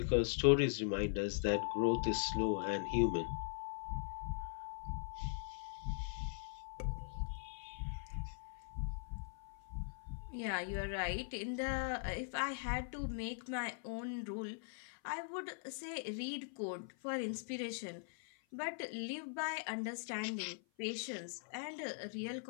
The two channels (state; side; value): silent; right; 50 dB below the other